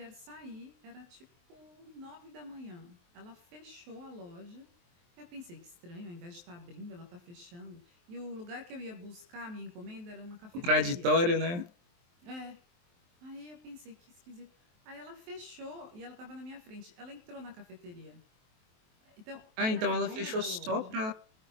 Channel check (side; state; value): left; late; 23 ms